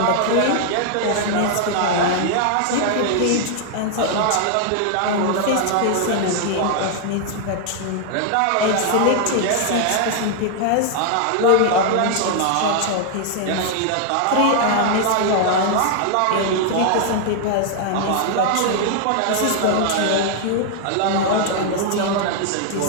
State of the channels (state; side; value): different; both; correlation 0.00